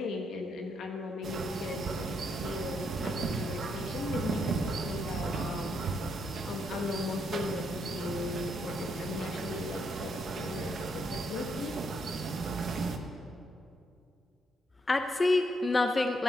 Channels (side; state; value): both; normal; correlation 0.77